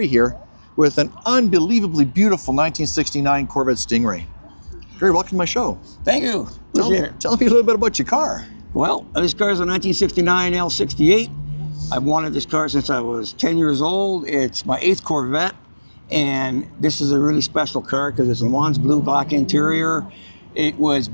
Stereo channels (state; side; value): inverted; both; correlation -1.00